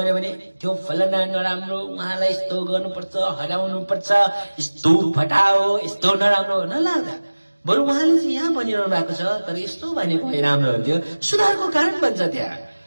भने त्यो फलाना नराम्रो, उहाँलाई यस्तो गर्नुपर्छ, हराउनुपर्छ, यस्तो फटाओ, यस्तो नराम्रो नलाग्दा बरु उहाँले चाहिँ यहाँ भनिरहनु भएको छ तर यस्तो भनेको भए राम्रो हुन्थ्यो, सुधारको कारण बन्छ त्यहाँ।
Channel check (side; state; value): both; inverted; correlation -1.00